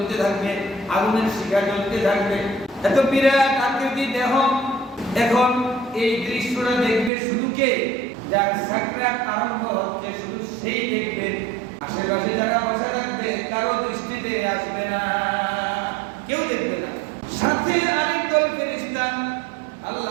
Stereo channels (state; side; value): drops out; left; at 7.1 s